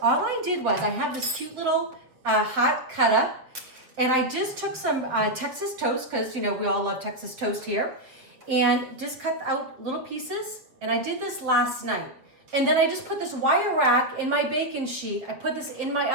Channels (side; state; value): left; late; 7.3 ms